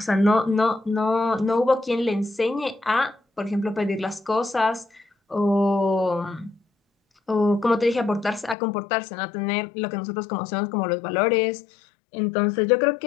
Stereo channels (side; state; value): right; drops out; at 8.6 s